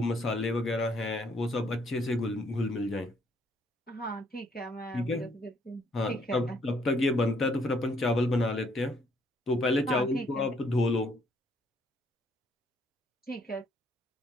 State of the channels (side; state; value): both; normal; correlation 0.68